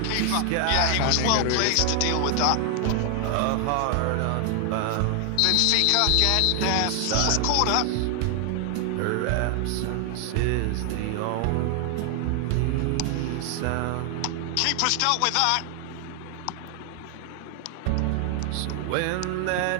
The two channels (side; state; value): both; different; correlation 0.00